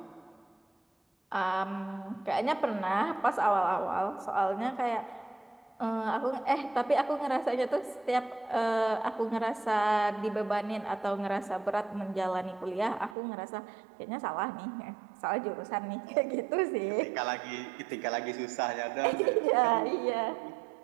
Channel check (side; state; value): left; drops out; at 13.2 s